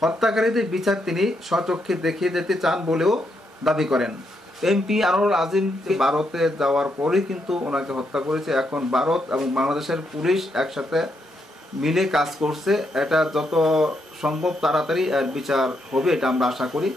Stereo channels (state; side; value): normal; both; correlation 0.79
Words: হত্যাকারীদের বিচার তিনি স্বচক্ষে দেখিয়ে যেতে চান বলেও দাবি করেন। এমপি আনোয়ারুল আজিম ভারতে যাওয়ার পরেই কিন্তু ওনাকে হত্যা করেছে। এখন ভারত এবং বাংলাদেশের পুলিশ একসাথে মিলে কাজ করছে। এটা যত সম্ভব তাড়াতাড়ি এর বিচার হবে, এটা আমরা আশা করি।